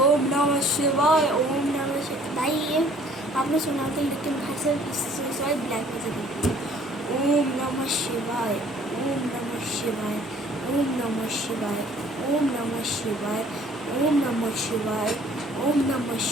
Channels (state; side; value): normal; both; correlation 0.56